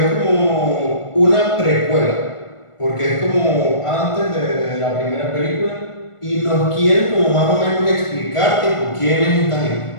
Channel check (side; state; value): right; late; 1.5 ms